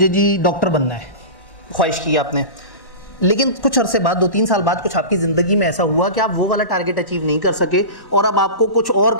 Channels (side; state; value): right; late; 1.1 ms